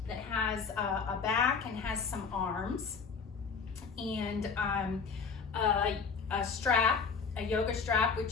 that has a back and has some arms, and a strap, a yoga strap,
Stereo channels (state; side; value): quieter; right; 5.4 dB